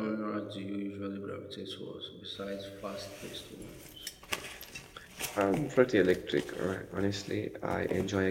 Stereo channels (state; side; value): identical; both; correlation 1.00